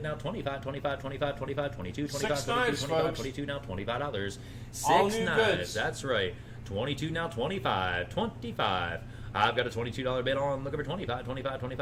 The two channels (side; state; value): both; identical; correlation 1.00